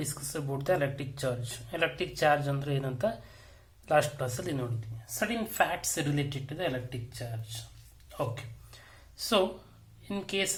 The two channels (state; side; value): identical; both; correlation 1.00